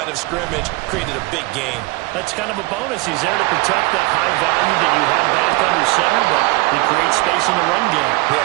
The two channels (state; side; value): quieter; left; 22.5 dB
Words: of scrimmage, created a big gain. That's kind of a bonus. He's there to protect that high value that you have back under center, but he creates space in the run game. Yeah,